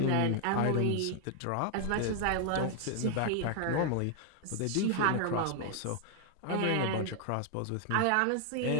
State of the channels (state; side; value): different; both; correlation 0.00